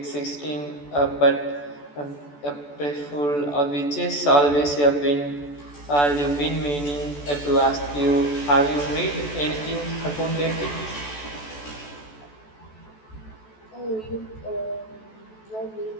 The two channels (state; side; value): late; right; 14 ms